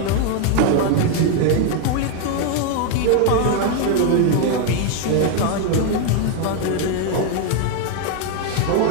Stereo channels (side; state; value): both; different; correlation 0.01